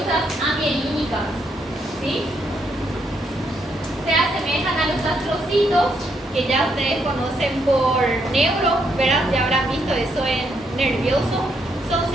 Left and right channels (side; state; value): both; normal; correlation 0.76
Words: amielínicas, ¿sí? Se asemejan a los astrocitos, que ya ustedes conocen por neuro, ¿verdad? Ya habrán visto eso en nervioso. Son